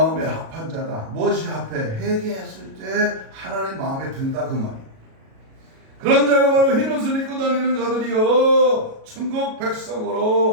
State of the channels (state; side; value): late; left; 37 ms